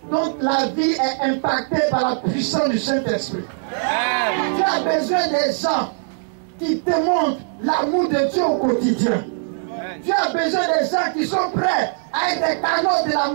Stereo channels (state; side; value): silent; left; 65 dB below the other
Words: dont la vie est impactée par la puissance du Saint-Esprit. Dieu a besoin des gens qui démontrent l'amour de Dieu au quotidien. Dieu a besoin des gens qui sont prêts à être des canaux de la